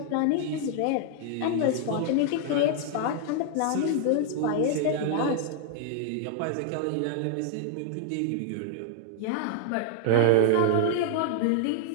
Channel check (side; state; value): both; different; correlation 0.00